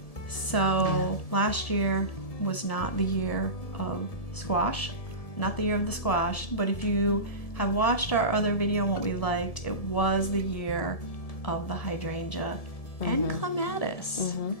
So last year was not the year of squash, not the year of the squash, but if you have watched our other video on what we liked, it was the year of the hydrangea and clematis.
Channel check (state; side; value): late; right; 1.7 ms